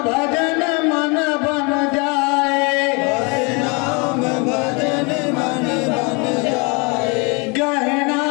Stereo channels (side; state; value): right; quieter; 30.9 dB